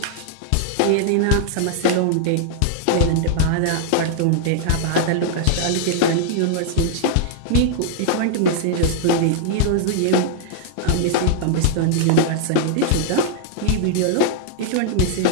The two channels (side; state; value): both; different; correlation -0.01